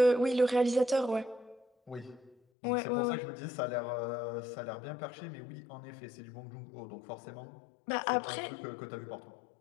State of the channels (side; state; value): right; drops out; at 2.4 s